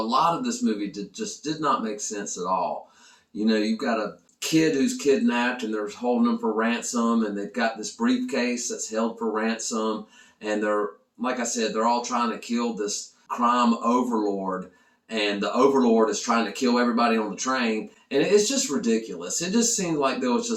of this movie just did not make sense at all. You've got a kid who's kidnapped and they're holding him for ransom, and they've got this briefcase that's held for ransom. And they're, like I said, they're all trying to kill this crime overlord. And the overlord is trying to kill everybody on the train. And it's just ridiculous. It just seemed like there was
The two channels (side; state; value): both; identical; correlation 1.00